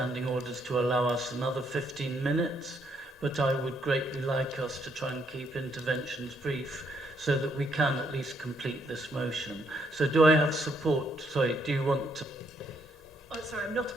orders to allow us another 15 minutes, but I would greatly like us to try and keep interventions brief so that we can at least complete this motion. So do I have support? Sorry, do you want to... Oh, sorry, I'm not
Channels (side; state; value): both; normal; correlation 0.73